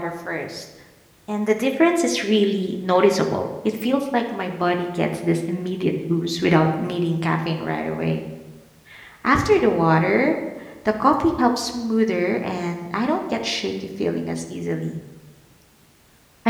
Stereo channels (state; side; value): identical; both; correlation 1.00